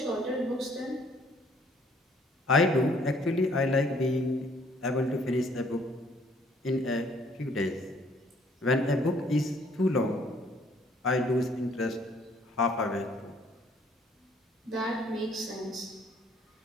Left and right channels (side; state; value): both; normal; correlation 0.62